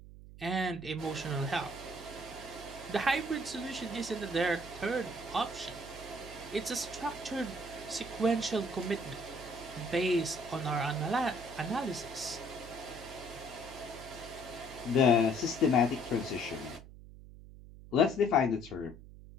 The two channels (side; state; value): right; noise; hum, 16 dB below the sound